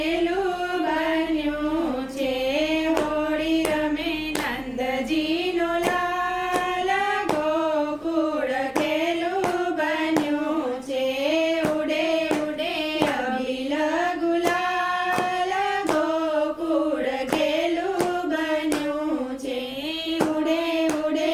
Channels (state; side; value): noise; left; hum, 29 dB below the sound